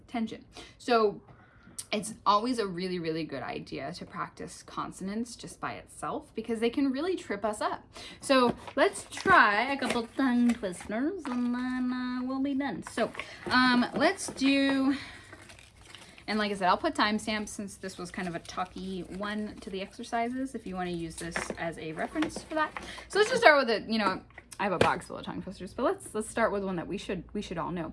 tension. So it's always a really, really good idea to practice consonants just by itself because they can really trip us up. So let's try a couple tongue twisters and then we'll be done. So let's do, and like I said, I'll put timestamps since this was kind of a talky one to the exercises if you want to use this as a reference for that. So let's just start with it. I have a box full of tongue twisters, but let's start with one that we should all know.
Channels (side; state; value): both; identical; correlation 1.00